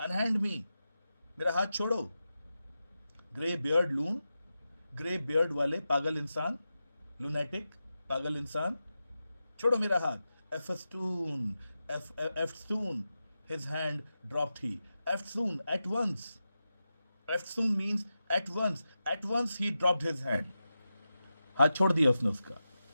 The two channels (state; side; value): inverted; both; correlation -0.91